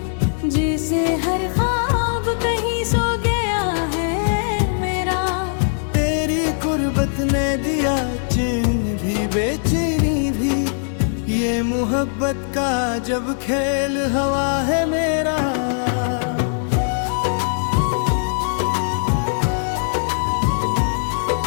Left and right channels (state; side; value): silent; right; 59 dB below the other